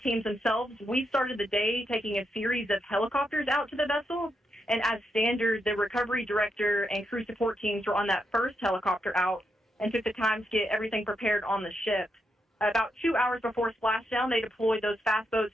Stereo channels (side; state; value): both; normal; correlation 0.82